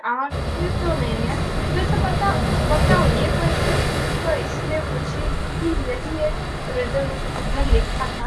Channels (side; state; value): both; identical; correlation 1.00